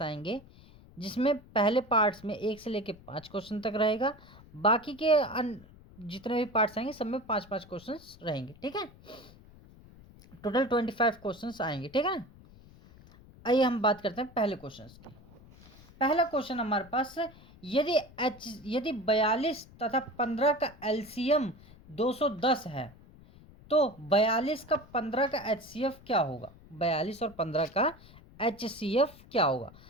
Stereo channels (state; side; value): noise; left; rumble, 22 dB below the sound